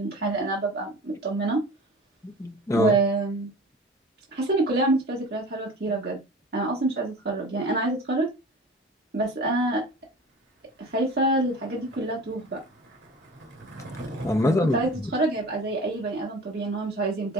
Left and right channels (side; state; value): both; normal; correlation 0.39